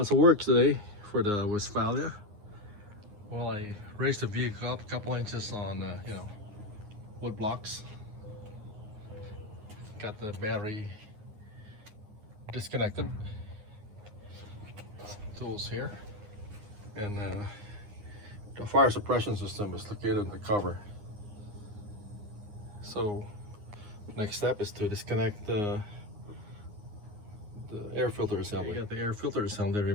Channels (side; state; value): left; late; 9.7 ms